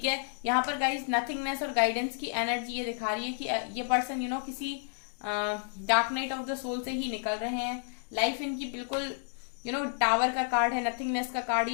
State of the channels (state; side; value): silent; right; 57 dB below the other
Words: है। यहाँ पर गाइस नथिंगनेस और गाइडेंस की एनर्जी ये दिखा रही है कि ये पर्सन किसी dark night of the soul से ही निकल रहे हैं। लाइफ इनकी बिल्कुल टावर का कार्ड है, नथिंगनेस का कार्ड,